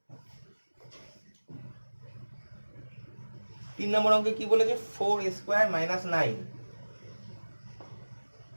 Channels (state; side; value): inverted; both; correlation -1.00